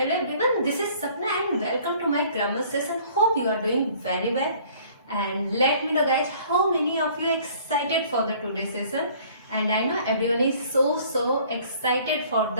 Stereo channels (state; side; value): inverted; both; correlation -0.55